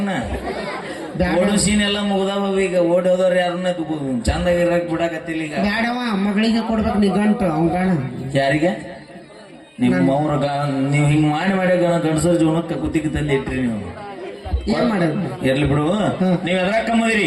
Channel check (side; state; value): both; identical; correlation 1.00